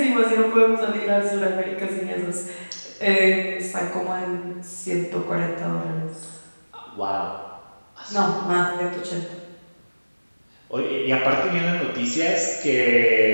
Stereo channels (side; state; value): both; inverted; correlation -1.00